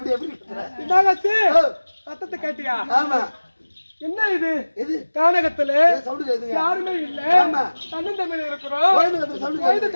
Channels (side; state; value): both; inverted; correlation -1.00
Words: சத்தத்தை கேட்டியா? ஆமா. என்ன இது? இது கானகத்துல சவுண்ட் யாருமே இல்ல. தன்னன் தமிழ் இருக்கிறோம்.